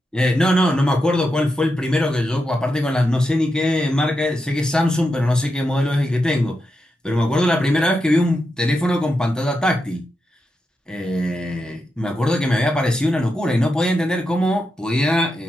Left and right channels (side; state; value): both; normal; correlation 0.87